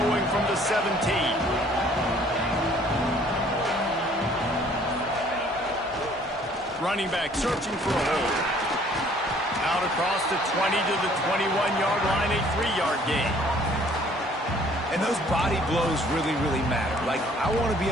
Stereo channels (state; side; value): normal; both; correlation 0.58